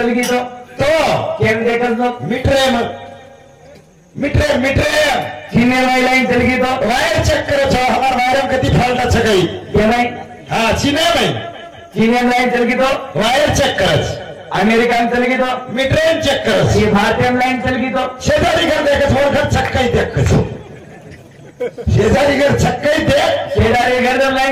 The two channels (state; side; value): identical; both; correlation 1.00